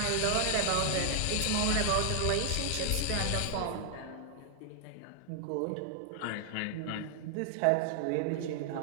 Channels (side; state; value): both; different; correlation 0.00